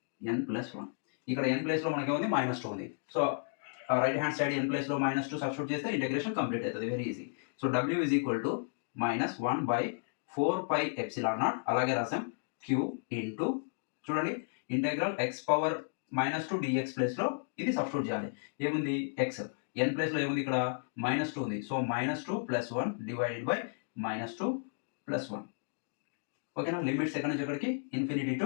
n plus 1. ఇక్కడ n place లో మనకి ఏముంది, -2 ఉంది. So right hand side n place లో -2 substitute చేస్తే ఇంటిగ్రేషన్ కంప్లీట్ అవుతుంది, very easy. So w is equal to -1 by 4 pi epsilon naught, అలాగే రాసాం q ఇంటూ, చూడండి integral x power -2 dx place లో ఇది సబ్స్టిట్యూట్ చేయాలి. ఏముంది, x n ప్లేస్ లో ఏముంది, ఇక్కడ -2 ఉంది. So -2 plus 1 divided by -2 plus 1. ఓకేనా, లిమిట్స్ ఎక్కడి నుంచి ఎక్కడికి, ఇన్ఫినిటీ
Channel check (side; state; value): right; silent; digital silence